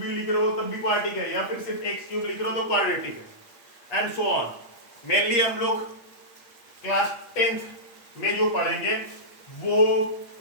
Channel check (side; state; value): right; late; 8.5 ms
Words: लिख रहे हो तब भी क्वाड्रेटिक है, या फिर सिर्फ x क्यूब लिख रहे हो तो क्वाड्रेटिक है, एंड सो ऑन। मेनली हम लोग क्लास 10th में जो पढ़ेंगे वो